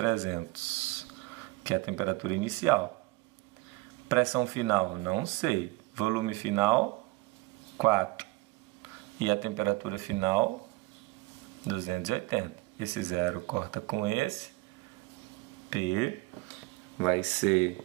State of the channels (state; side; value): quieter; left; 21.6 dB